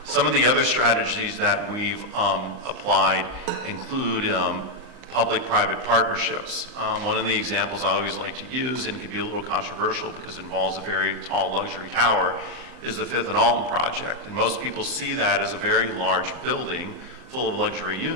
Some of the other strategies that we've applied include public-private partnerships. One of the examples I always like to use, and can be a little controversial because it involves a very tall luxury tower, is the Fifth and Alton project. And most people see that as a very large building full of luxury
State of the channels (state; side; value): late; left; 38 ms